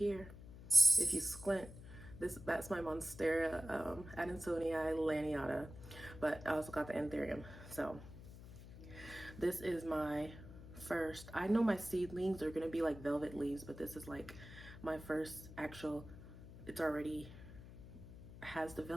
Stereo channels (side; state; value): left; noise; hum, 15 dB below the sound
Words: If you squint, that's my Monstera Adansonii laniata, but I also got the Anthurium. So this is my first, I know my seedlings are gonna be like velvet leaves, but this is like my first actual, it's already has the